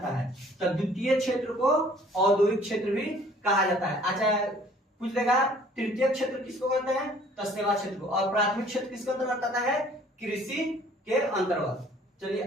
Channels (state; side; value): normal; both; correlation 0.55